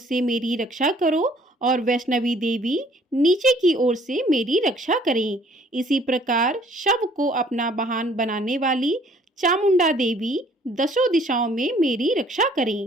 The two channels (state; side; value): normal; both; correlation 0.59